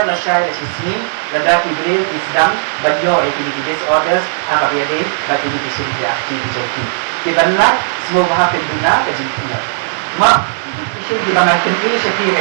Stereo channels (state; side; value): silent; left; digital silence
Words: na siya na sismin lada kidril isdang banyo ay disorders ang kapiyade at hindi siyempre akti joki ibanla smoke hapin doon na kajing pina ma isyong dibangakin ini siya kaya